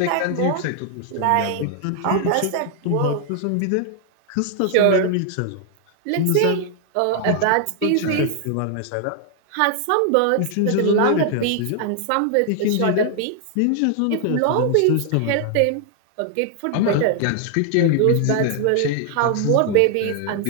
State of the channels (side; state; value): both; different; correlation 0.00